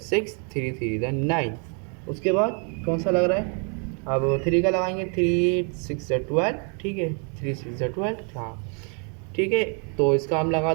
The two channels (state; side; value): quieter; left; 39.0 dB